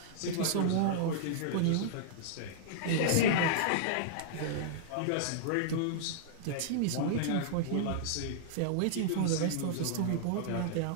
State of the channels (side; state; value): both; different; correlation -0.01